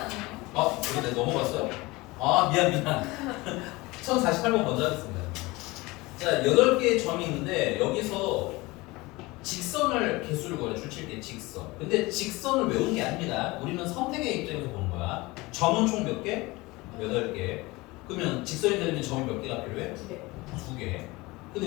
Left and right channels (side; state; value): right; quieter; 22.2 dB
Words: 이거 내가 넘어갔어요? 미안 1048번 먼저 하겠습니다. 자 8개의 점이 있는데 여기서 직선을 개수를 구해 줄칠 때 직선. 근데 직선을 외우는 게 아닙니다. 우리는 선택의 입장에서 보는 거야. 점은 총 몇 개? 8개. 그러면 직선이 되려면 점이 몇 개가 필요해? 2개. 2개.